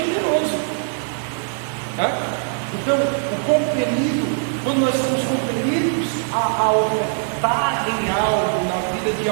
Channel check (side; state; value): left; silent; 59 dB below the other